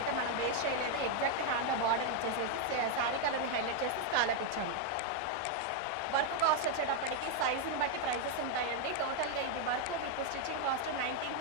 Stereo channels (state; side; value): different; both; correlation 0.00